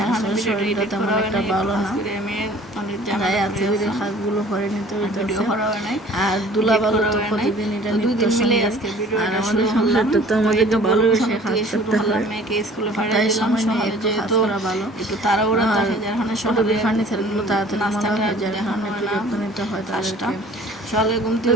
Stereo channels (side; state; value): both; normal; correlation 0.50